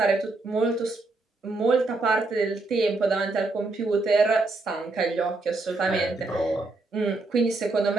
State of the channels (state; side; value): quieter; left; 3.3 dB